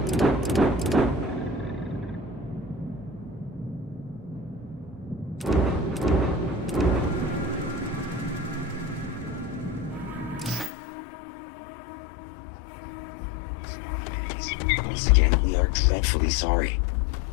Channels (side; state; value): right; drops out; at 10.7 s